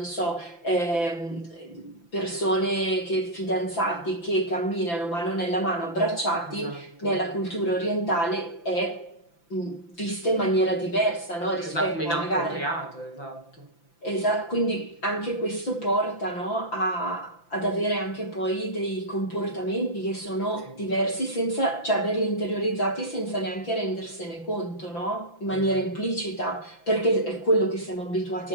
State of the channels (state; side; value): late; right; 5.9 ms